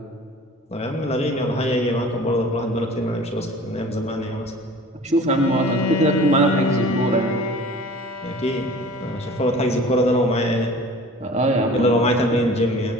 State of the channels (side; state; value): both; normal; correlation 0.44